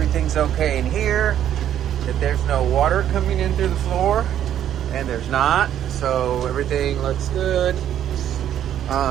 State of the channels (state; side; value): quieter; left; 10.7 dB